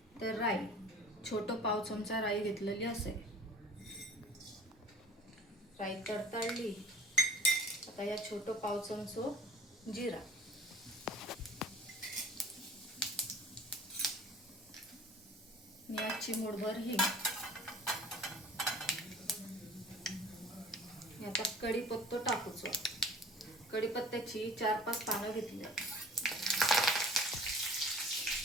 तर राई, छोटं पाव चमचा राई घेतलेली असेल. राई तडतडली. आता या छोटं पाव चमचो जिरा, या चिमूटभर हिंग, आता कढीपत्ता टाकूचो. कढीपत्त्याची 4-5 पानं घेतली.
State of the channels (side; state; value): both; normal; correlation 0.46